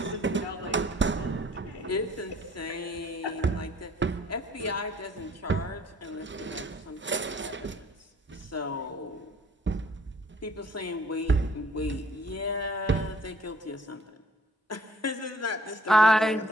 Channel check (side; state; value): both; normal; correlation 0.58